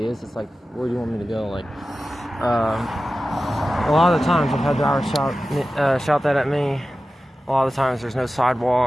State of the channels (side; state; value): both; normal; correlation 0.94